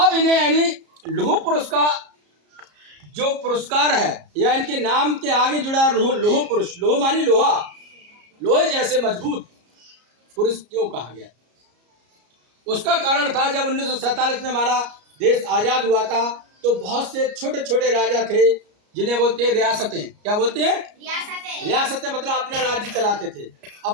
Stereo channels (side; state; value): left; late; 33 ms